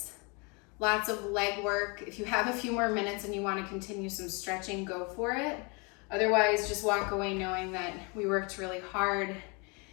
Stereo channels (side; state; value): right; quieter; 31.3 dB